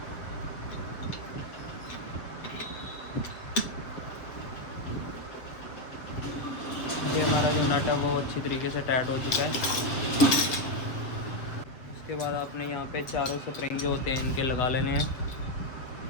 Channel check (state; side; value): late; right; 7.7 ms